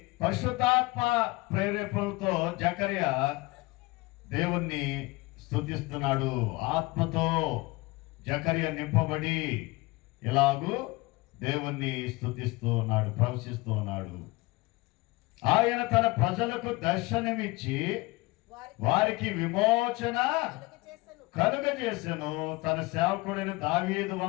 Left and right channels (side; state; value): right; quieter; 22.8 dB